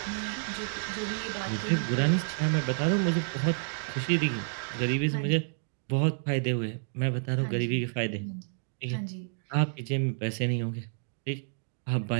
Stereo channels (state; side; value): silent; left; digital silence